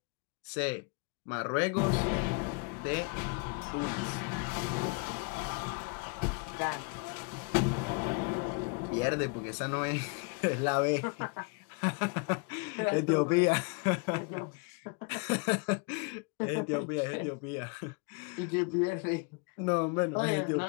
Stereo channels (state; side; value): quieter; right; 32.3 dB